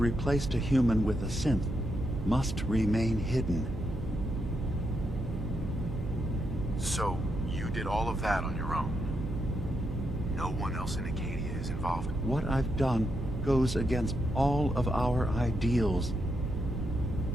a human with a synth must remain hidden. So, you did all of that on your own? No one else in Acadia is involved? What I've done goes against all of our ideals.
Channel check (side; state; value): right; noise; hum, 7 dB below the sound